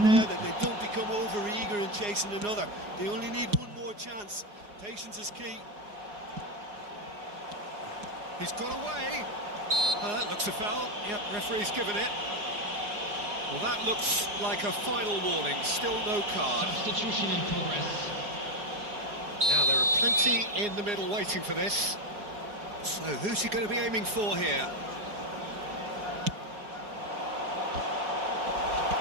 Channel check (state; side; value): late; left; 4.8 ms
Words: the- there that they don't become over-eager in chasing another. They only need one more chance. Patience is key. He's got away. That looks a foul. Yep, referee's given it. Well, that looks like a final warning. Still no card. Substitution in progress. Now, there are plenty in the middle waiting for this. So, who's he going to be aiming for here?